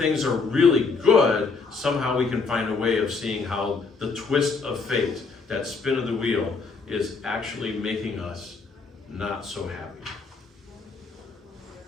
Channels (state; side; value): quieter; right; 4.5 dB